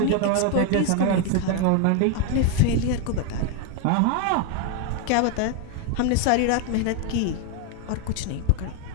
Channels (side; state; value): both; different; correlation 0.01